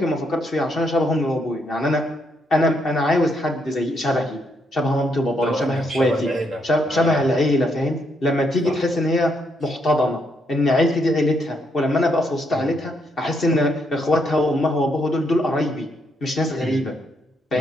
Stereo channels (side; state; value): both; normal; correlation 0.76